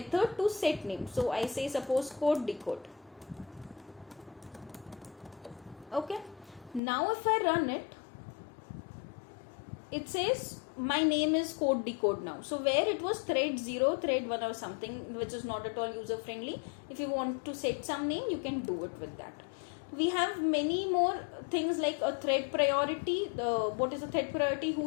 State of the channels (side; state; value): right; drops out; at 6.8 s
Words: to set name. So I say suppose code decode. Okay, now if I run it, it says my name is code decode now. So where it was thread 0, thread 1 or something, which is not at all user friendly, if you want to set some name, you can do it with that. We have many more things like a thread priority. What is a thread priority?